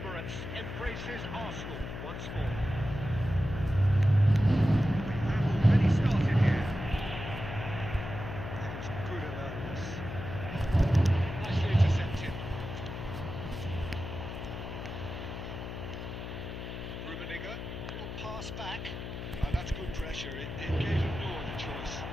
embraces Arsenal once more. We've already started here. That is good alertness. Nicely intercepted. Rummenigge, little pass back. Oh, that's good pressure. It gave him no other choice.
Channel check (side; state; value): left; noise; hum, 8 dB below the sound